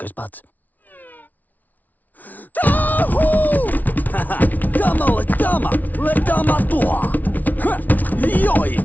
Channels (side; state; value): right; late; 0.078 ms